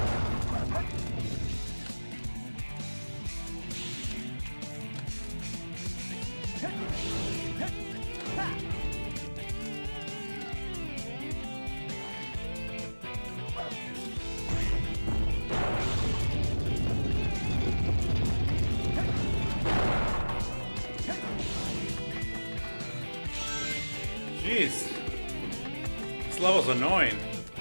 Jeez. This level's annoying.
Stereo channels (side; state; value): both; inverted; correlation -1.00